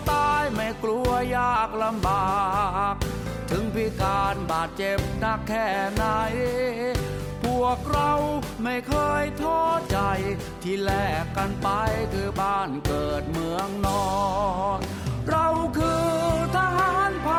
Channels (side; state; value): both; identical; correlation 1.00